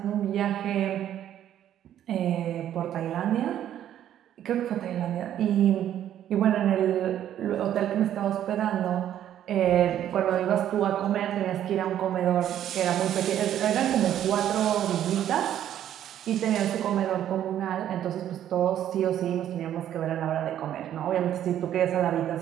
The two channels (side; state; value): left; quieter; 11.0 dB